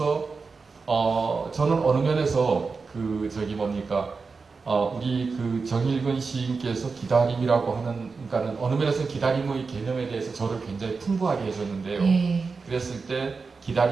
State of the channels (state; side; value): quieter; left; 4.6 dB